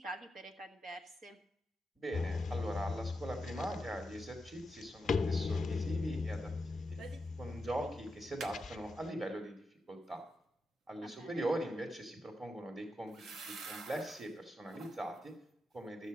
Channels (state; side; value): normal; both; correlation 0.87